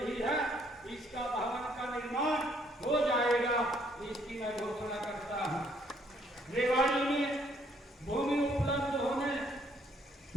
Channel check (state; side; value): normal; both; correlation 0.67